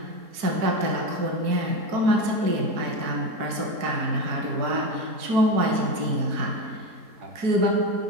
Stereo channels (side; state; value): left; late; 4.5 ms